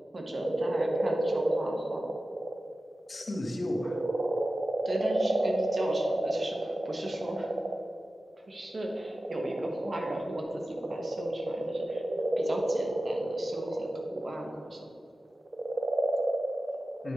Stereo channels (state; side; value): normal; both; correlation 0.94